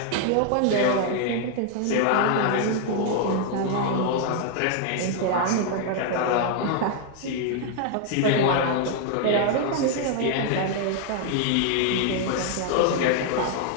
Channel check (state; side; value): different; both; correlation 0.00